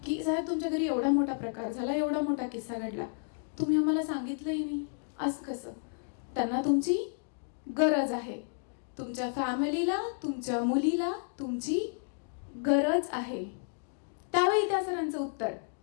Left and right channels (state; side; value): silent; right; digital silence